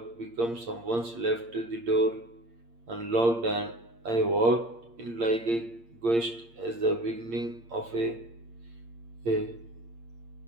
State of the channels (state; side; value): late; left; 8.6 ms